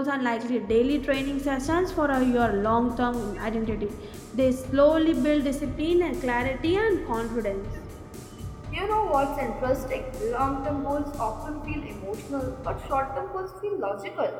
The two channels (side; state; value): both; identical; correlation 1.00